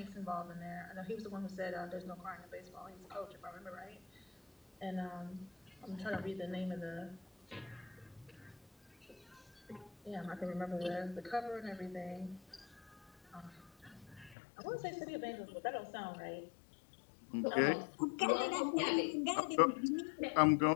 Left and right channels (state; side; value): drops out; right; at 14.4 s